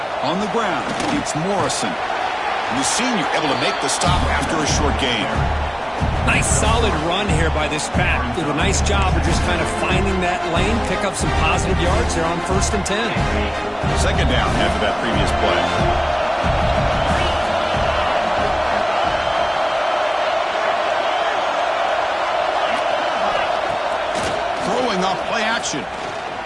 On the ground, it's Morrison. And the senior able to make the stop after a short gain. Nice solid run here by this pack. Did a nice job of just kind of finding that lane, pick up some positive yards there on 1st and 10. Second down after that previous play. Throwing off play action.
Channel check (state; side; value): identical; both; correlation 1.00